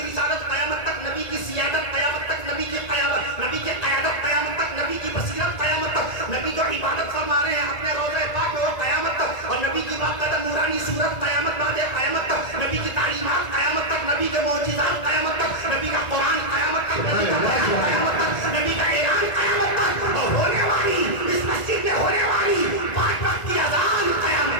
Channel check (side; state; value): right; late; 1.9 ms